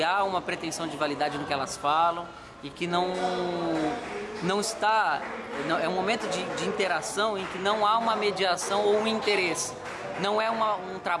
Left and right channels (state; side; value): identical; both; correlation 1.00